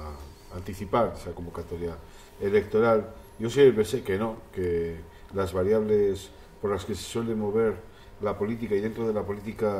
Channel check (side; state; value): both; identical; correlation 1.00